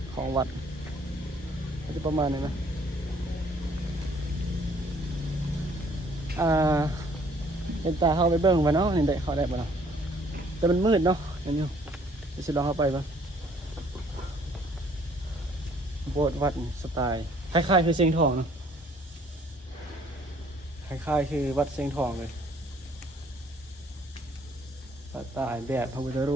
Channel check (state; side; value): normal; both; correlation 0.61